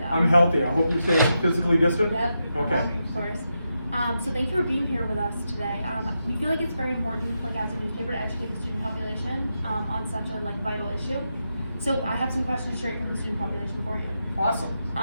I'm healthy. I hope you're staying physically distant? Yep. Okay. Of course. So thank you for being here with us today. We feel like it's very important, like as a newspaper, to educate the student population on such a vital issue. So I have some questions straight from the student population for you. Awesome.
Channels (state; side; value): inverted; both; correlation -0.86